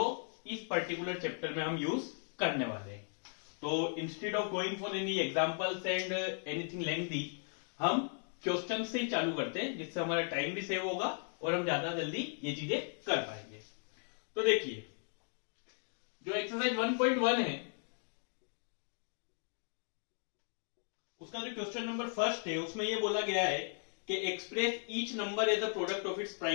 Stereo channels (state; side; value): silent; right; 53 dB below the other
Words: इस पर्टिकुलर चैप्टर में हम यूज करने वाले हैं। तो instead of going for any examples and anything lengthy, हम क्वेश्चन से ही चालू करते हैं, जिससे हमारा टाइम भी सेव होगा और हम ज्यादा जल्दी ये चीजें कर पाएंगे। तो देखिए जो एक्सरसाइज 1.1 है उसका जो क्वेश्चन नंबर फर्स्ट है उसमें ये बोला गया है कि express each number as a product of its